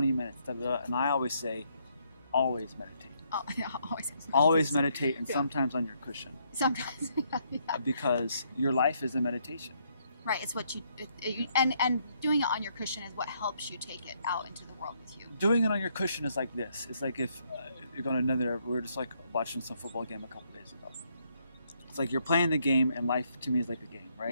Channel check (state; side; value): inverted; both; correlation -0.73